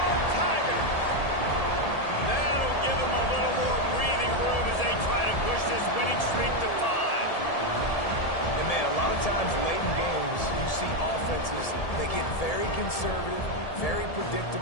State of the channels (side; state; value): right; late; 1.7 ms